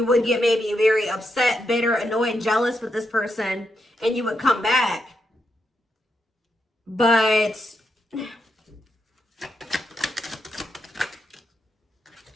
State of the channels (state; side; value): normal; both; correlation 0.83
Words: would get maybe very upset, bitter, annoyed, jealous with this person, and you would come back. But